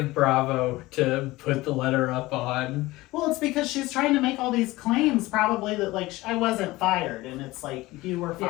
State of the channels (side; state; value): right; quieter; 19.3 dB